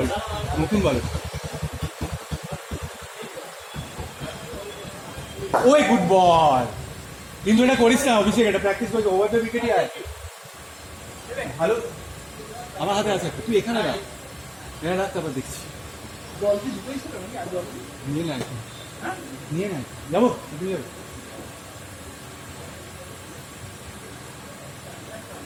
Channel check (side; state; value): both; identical; correlation 1.00